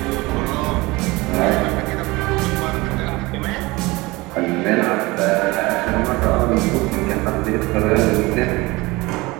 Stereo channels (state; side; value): quieter; left; 22.2 dB